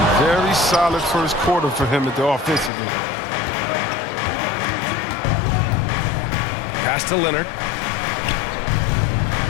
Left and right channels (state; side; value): drops out; right; at 2.7 s